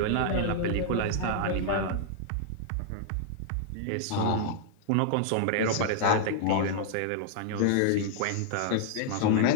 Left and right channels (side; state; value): both; different; correlation -0.01